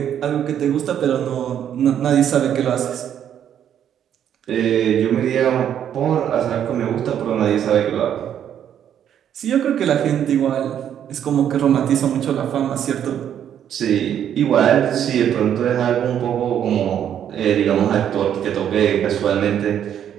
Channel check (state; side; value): quieter; left; 9.6 dB